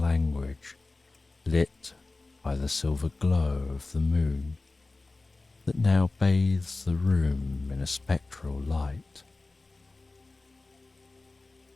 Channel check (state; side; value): quieter; right; 3.3 dB